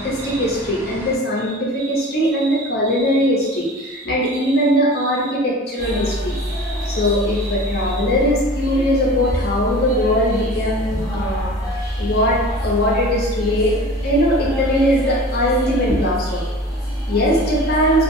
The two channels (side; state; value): both; normal; correlation 0.39